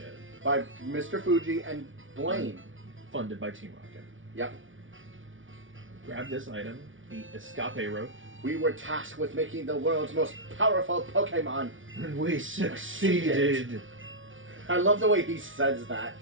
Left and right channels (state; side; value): late; left; 0.57 ms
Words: By Mr. Fuji and Blaine. Funded by Team Rocket. Yep. Grab this item, the Escape Rope. We were tasked with making the world's most powerful Pokemon. And we succeeded. I love the way he says that.